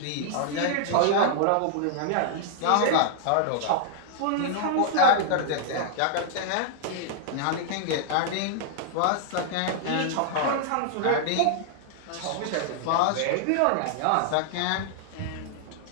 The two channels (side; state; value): both; different; correlation -0.01